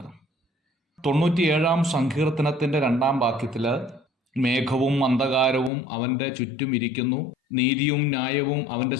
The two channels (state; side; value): drops out; right; at 5.7 s